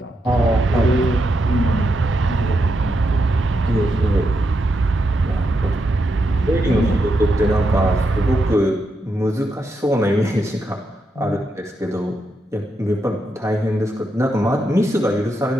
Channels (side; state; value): both; normal; correlation 0.83